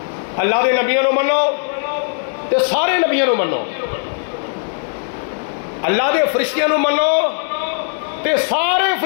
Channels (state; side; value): silent; right; digital silence